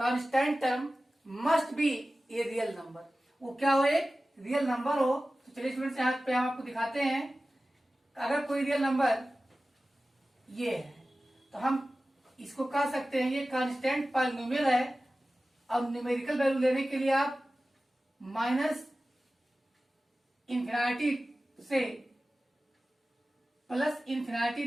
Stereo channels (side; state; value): both; normal; correlation 0.96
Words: term must be a real number. वो क्या हो, एक रियल नंबर हो। तो चलिए स्टूडेंट्स यहाँ पे हम आपको दिखाते हैं। अगर कोई रियल नंबर ये है तो हम इसको कह सकते हैं ये कांस्टेंट पॉलिनोमियल है। अब न्यूमेरिकल वैल्यू लेने के लिए आप माइनस इन्फिनिटी से प्लस